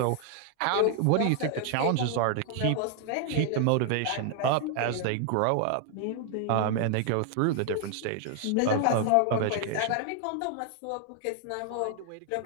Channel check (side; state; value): both; different; correlation 0.00